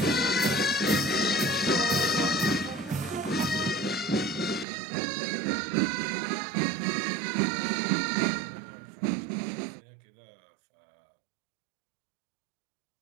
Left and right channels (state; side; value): drops out; left; at 4.7 s